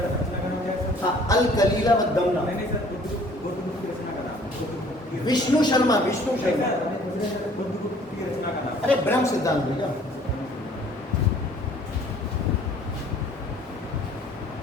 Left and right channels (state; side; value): normal; both; correlation 0.55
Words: हाँ, अल कलीला व दमना। विष्णु शर्मा अरे ब्रह्म सिद्धांत भैया,